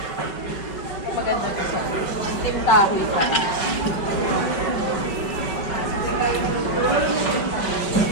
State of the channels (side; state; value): right; late; 5.3 ms